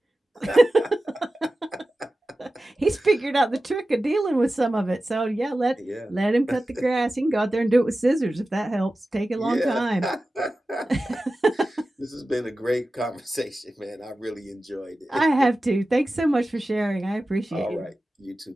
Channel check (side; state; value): both; normal; correlation 0.94